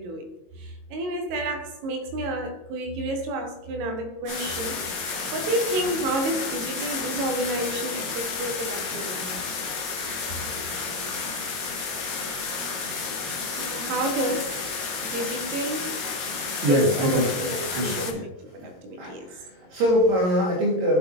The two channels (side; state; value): left; late; 22 ms